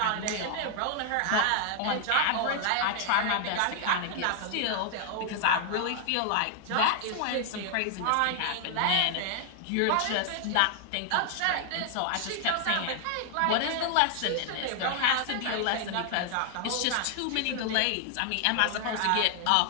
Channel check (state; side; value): different; both; correlation 0.00